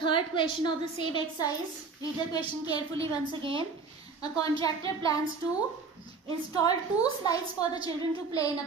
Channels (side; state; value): left; quieter; 4.6 dB